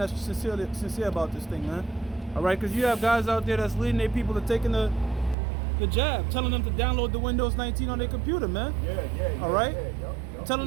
sincere about this thing, man. All right, because you have guys out there that's leading their people to taking the jab, telling them to download the Windows 19 on their computer, man. Yeah. All right? Yep. Telling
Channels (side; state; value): left; drops out; at 5.4 s